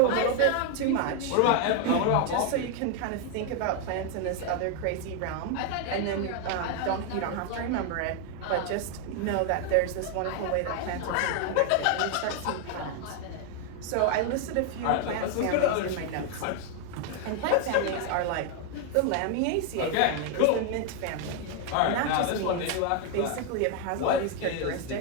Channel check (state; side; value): different; both; correlation 0.01